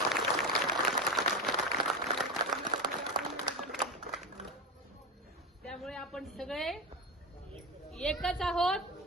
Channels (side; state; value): both; normal; correlation 0.20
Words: त्यामुळे आपण सगळे एकच आहोत,